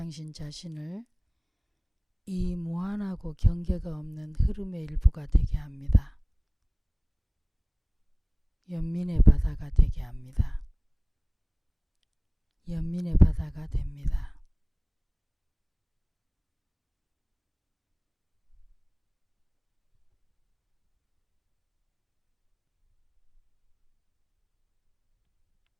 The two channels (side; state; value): both; identical; correlation 1.00